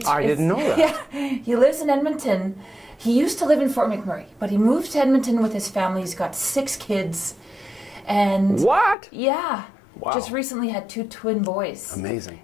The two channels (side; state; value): right; drops out; at 9.0 s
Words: I didn't know that. Yeah, he lives in Edmonton. He used to live in Fort McMurray, but he moved to Edmonton with his family. He's got 6 kids. And What? yeah. Wow. Just recently had 2 twin boys. Amazing.